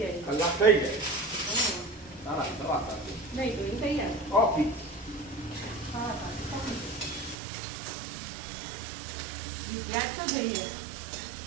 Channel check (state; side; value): drops out; left; at 7.4 s